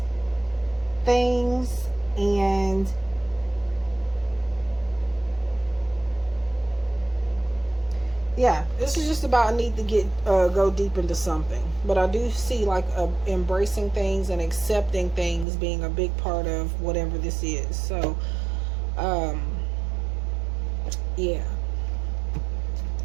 things, and yeah, this is just about need to get go deep into something. But I do see like embracing things and accepting things being a big part of whatever this is. So yeah.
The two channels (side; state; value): left; drops out; at 15.5 s